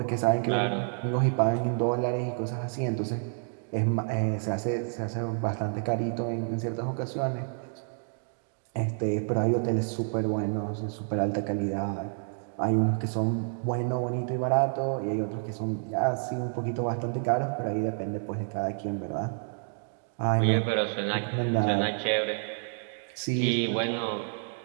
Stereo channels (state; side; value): silent; left; 55 dB below the other